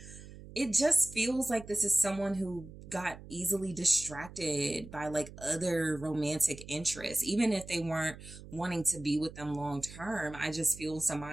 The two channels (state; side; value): noise; right; hum, 16 dB below the sound